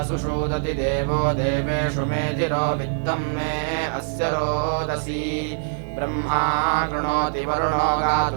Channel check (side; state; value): left; silent; digital silence